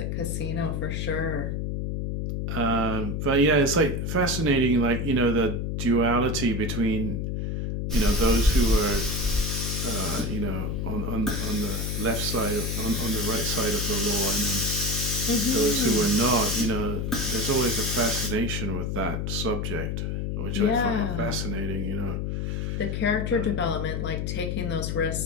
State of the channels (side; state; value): left; noise; hum, 1 dB below the sound